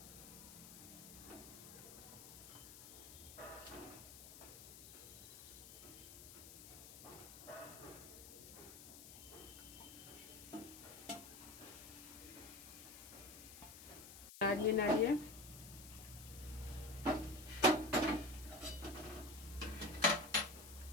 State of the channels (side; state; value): left; noise; hiss, 14 dB below the sound